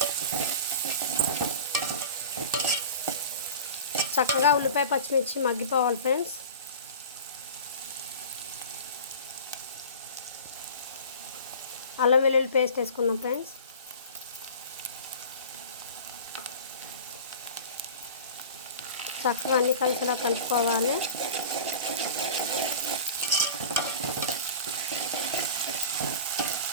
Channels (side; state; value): both; inverted; correlation -0.38